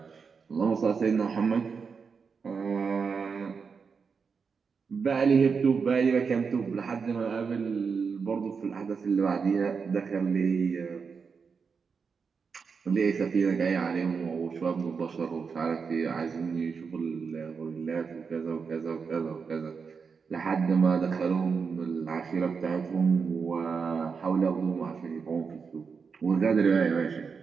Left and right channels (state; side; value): quieter; left; 5.6 dB